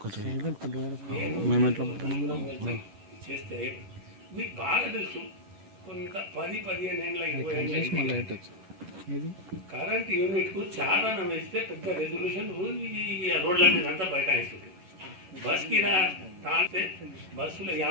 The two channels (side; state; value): left; late; 11 ms